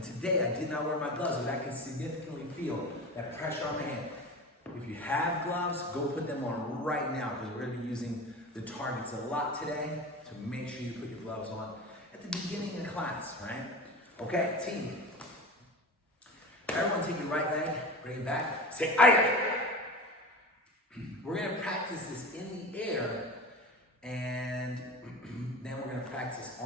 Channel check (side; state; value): both; normal; correlation 0.30